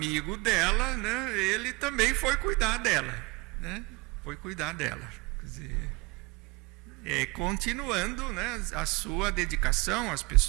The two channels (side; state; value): left; quieter; 25.8 dB